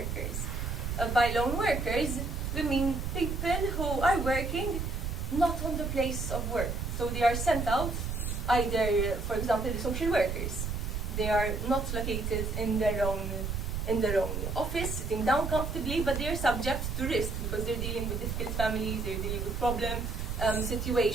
By lone workers, we mean people who are working not on the place of work. So they are sent out, either, for example, the social workers. They are not located in their own office, sitting down comfortably, but they are subject to risk because they're dealing with difficult families, they're dealing with problem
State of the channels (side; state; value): right; noise; rumble, 3 dB below the sound